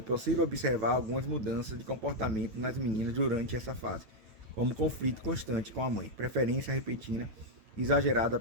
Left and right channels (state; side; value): late; left; 9.2 ms